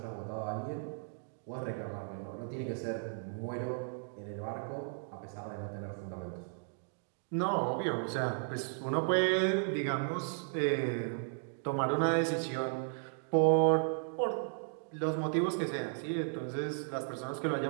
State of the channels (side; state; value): left; silent; digital silence